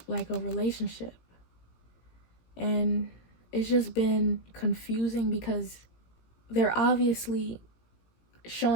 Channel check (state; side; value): late; right; 18 ms